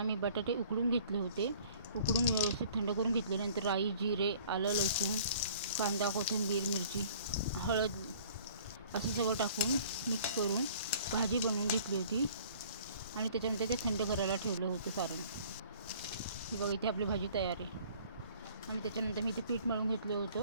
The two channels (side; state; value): both; inverted; correlation -0.52